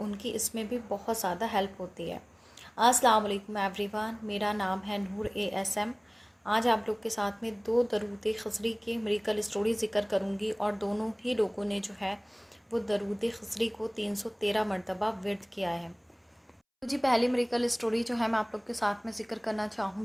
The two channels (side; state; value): both; identical; correlation 1.00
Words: کی اس میں بھی بہت زیادہ ہیلپ ہوتی ہے۔ السلام علیکم ایوری ون، میرا نام ہے نور ASM۔ آج آپ لوگ کے ساتھ میں 2 درود خضری کے میریکل اسٹوری ذکر کروں گی، اور دونوں ہی لوگوں نے جو ہے وہ درود خضری کو 313 مرتبہ ورد کیا ہے۔ تو جی پہلی میریکل اسٹوری جو ہے میں آپ لوگ کے ساتھ میں ذکر کرنا